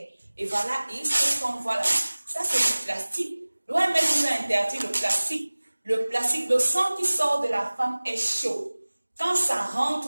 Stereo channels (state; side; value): inverted; both; correlation -1.00